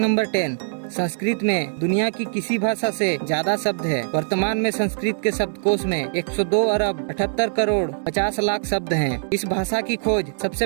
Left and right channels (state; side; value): silent; left; digital silence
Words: 10, संस्कृत में दुनिया की किसी भाषा से ज्यादा शब्द है। वर्तमान में संस्कृत के शब्दकोश में 102 अरब 78 करोड़ 50 लाख शब्द हैं। इस भाषा की खोज